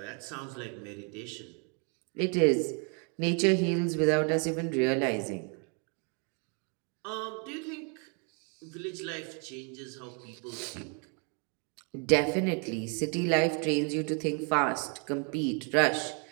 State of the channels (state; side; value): quieter; left; 37.3 dB